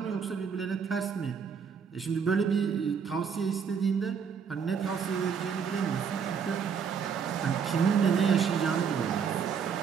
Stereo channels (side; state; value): left; quieter; 6.6 dB